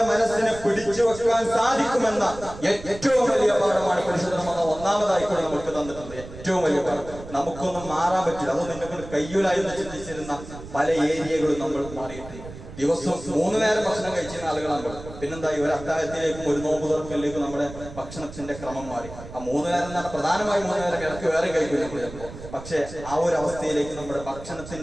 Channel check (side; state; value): right; noise; rumble, 14 dB below the sound